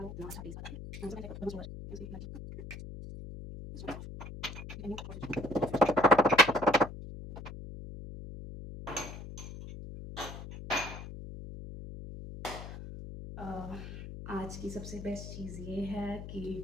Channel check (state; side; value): noise; left; hum, 10 dB below the sound